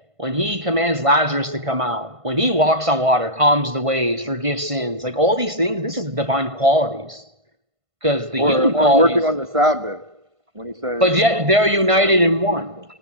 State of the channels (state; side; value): late; left; 1.5 ms